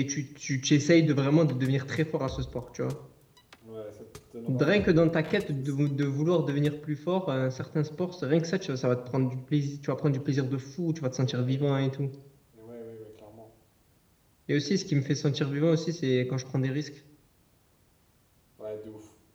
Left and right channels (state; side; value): identical; both; correlation 1.00